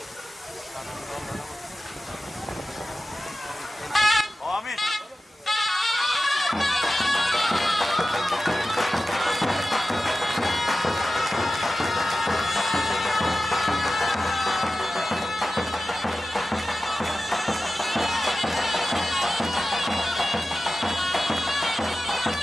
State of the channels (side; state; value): both; normal; correlation 0.94